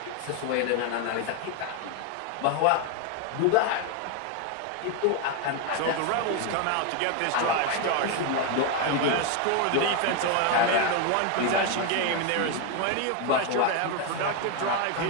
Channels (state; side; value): different; both; correlation 0.01